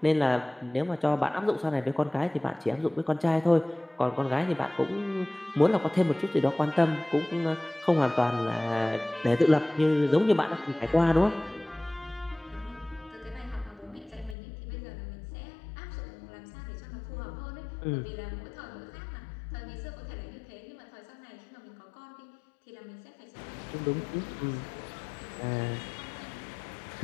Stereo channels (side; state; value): right; drops out; at 14.4 s